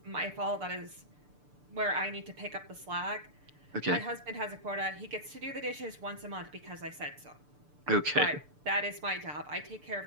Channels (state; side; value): late; left; 6.8 ms